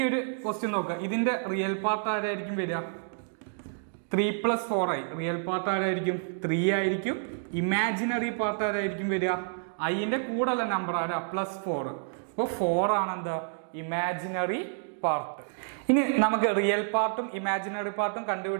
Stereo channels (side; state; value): left; silent; digital silence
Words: ഒരു ക്വസ്റ്റ്യൻ നോക്കുക, ഇതിന്റെ റിയൽ പാർട്ട് ആരായിരിക്കും വരിക, 3 + 4i. റിയൽ പാർട്ട് ആരായിരിക്കും, 3 ആയിരിക്കും. ഇമാജിനറി പാർട്ട് ആരായിരിക്കും വരിക, ഐന്റെ കൂടെയുള്ള നമ്പർ ആരാ, +4. അപ്പോൾ 4 ആണ് എന്താ, ഇമാജിനറി പാർട്ട്. ഇനി നമുക്ക് റിയൽ പാർട്ടും ഇമാജിനറി പാർട്ടും